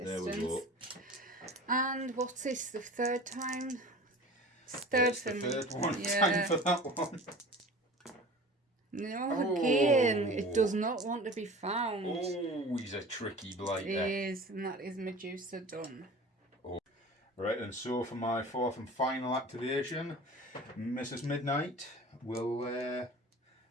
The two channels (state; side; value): normal; both; correlation 0.39